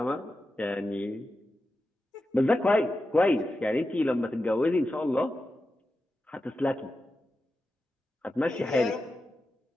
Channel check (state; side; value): normal; both; correlation 0.91